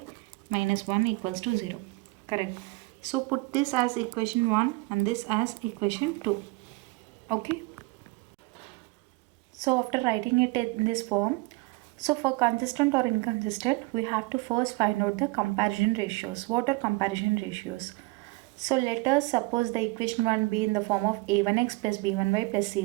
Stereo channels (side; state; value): left; quieter; 23.8 dB